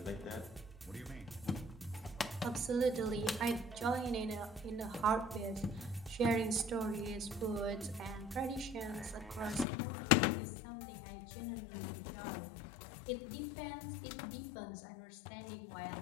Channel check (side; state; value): right; drops out; at 9.7 s